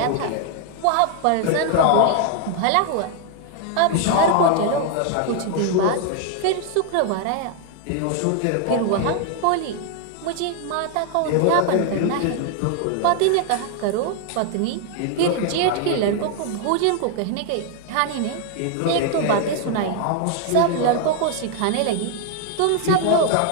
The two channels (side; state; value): both; different; correlation 0.00